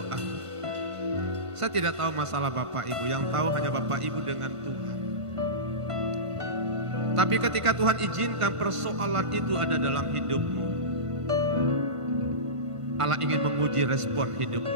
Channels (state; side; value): late; left; 1.5 ms